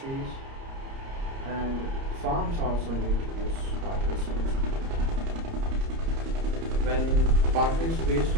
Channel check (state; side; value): late; left; 30 ms